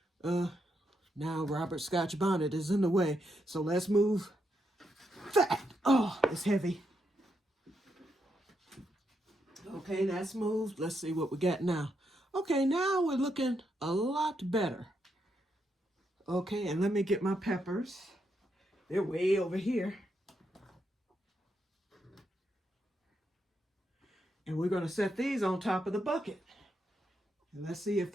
Now Robert Scotch bonnet is in the way, so let's move that. Oh, it's heavy. Okay, that's moved. Let's see what we got now. Okay, now we're looking a lot better. Okay, and let me get my peppers. They're way over here. And we're going to set these on top of the bucket. And let's see if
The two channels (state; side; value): normal; both; correlation 0.81